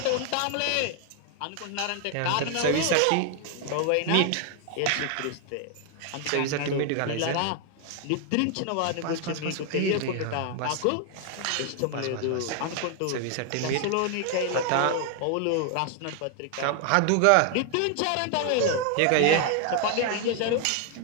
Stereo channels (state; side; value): different; both; correlation 0.00